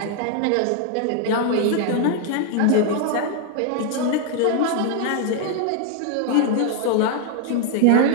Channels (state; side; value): different; both; correlation 0.00